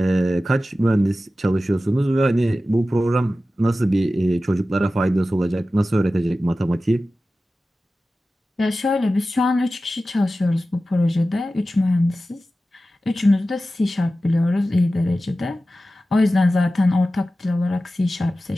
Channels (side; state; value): both; normal; correlation 0.94